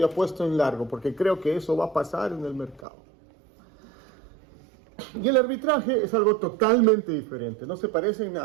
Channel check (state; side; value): drops out; left; at 2.9 s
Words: apuesto en largo, porque creo que eso va a pasar en el mercado. Y el arbitraje es algo totalmente diferente, no se parece en